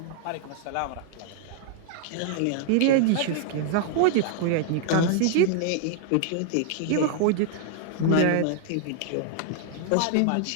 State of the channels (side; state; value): both; different; correlation 0.00